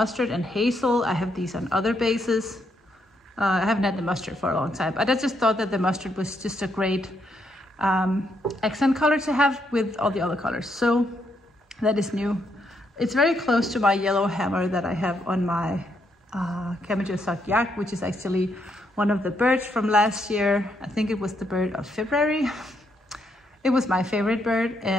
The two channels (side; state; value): both; normal; correlation 0.76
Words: and hazel. I have these on other bases. I haven't had the mustard for a long time, but I just thought that the mustard was just a great accent color to have with all the other colors. So that is new. It's very close to my yellow hammer that I have on my Camellia Sock Yak, which is actually one of the birds from last year. I think it was the bird of February. It was my favorite bird,